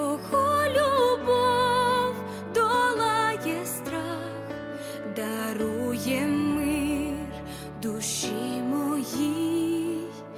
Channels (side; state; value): both; identical; correlation 1.00